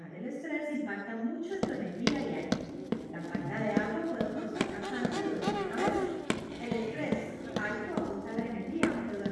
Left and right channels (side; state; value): both; identical; correlation 1.00